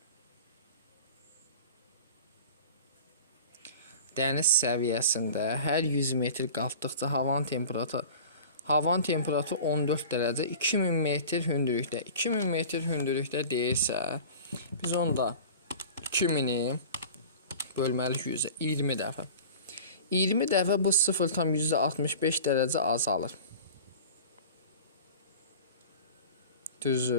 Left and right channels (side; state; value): both; inverted; correlation -0.39